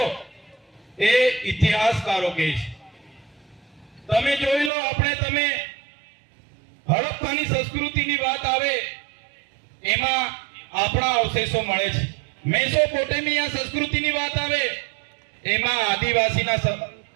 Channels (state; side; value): drops out; left; at 4.7 s